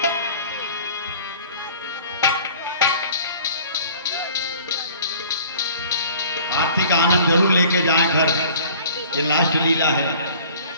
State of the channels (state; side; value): inverted; both; correlation -0.49